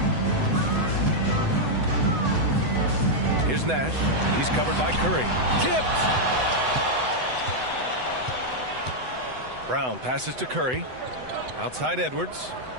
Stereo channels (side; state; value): left; late; 7.9 ms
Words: Here's Nash. He's covered by Curry. Tipped! Brown passes to Curry. Outside Edwards.